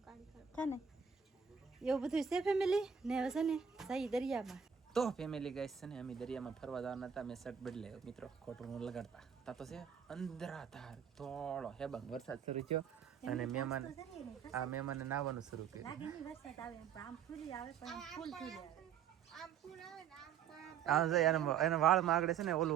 છે ને એવું બધું છે ફેમિલી ને. હવે છે ને સહી દરિયામાં તો ફેમિલી ગાઈસ છે ને અમે દરિયામાં ફરવા જવાના હતા. મેં શર્ટ બદલાયો મિત્રો ખોટું ન લગાડતા તા તો છે અંધરાધાર થોડો હેબંગ વરસાદ શરૂ થયો અને મહેમાને નાવાનું શરૂ કર્યું. એના વાળમાં આગળ છે ને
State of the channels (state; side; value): quieter; left; 7.6 dB